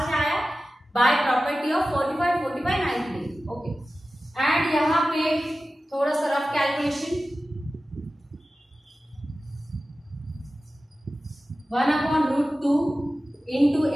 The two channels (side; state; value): both; normal; correlation 0.95